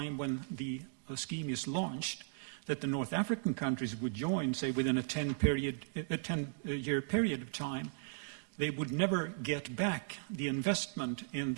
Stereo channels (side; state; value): left; silent; digital silence